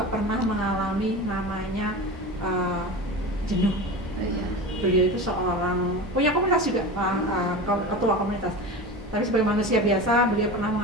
pernah mengalami namanya jenuh. Beliau itu seorang punya komunitas juga, ketua komunitas. Tapi sebagai manusia biasa, beliau pernah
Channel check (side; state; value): both; normal; correlation 0.29